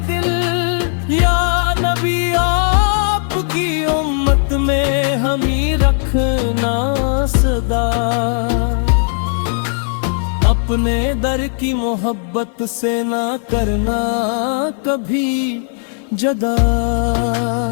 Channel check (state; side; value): silent; right; 68 dB below the other